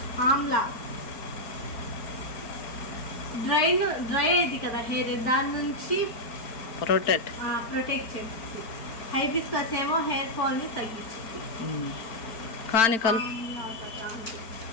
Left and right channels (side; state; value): right; late; 4.5 ms